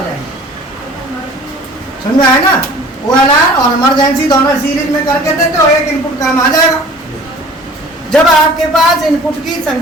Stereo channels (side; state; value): both; normal; correlation 0.47